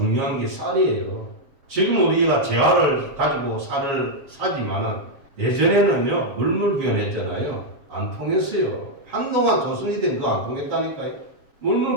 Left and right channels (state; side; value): late; left; 7.3 ms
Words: 게 쌀이에요. 지금 우리가 재화를 가지고 쌀을 사지만은 예전에는요 물물교환했잖아요. 안 통했어요. 한동안 조선이 된 거 안 통했다니까요.